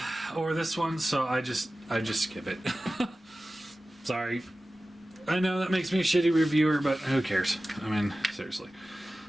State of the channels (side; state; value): both; normal; correlation 0.96